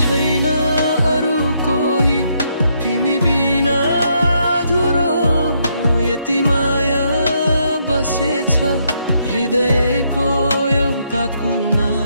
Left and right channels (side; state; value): both; inverted; correlation -0.75